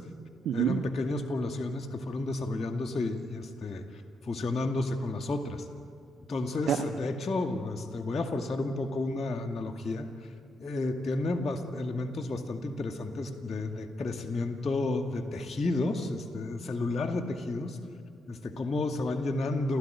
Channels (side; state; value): both; normal; correlation 0.80